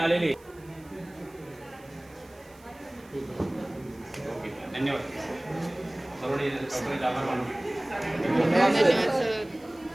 धन्यवाद. सर्व आभार मानू.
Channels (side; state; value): right; noise; hiss, 27 dB below the sound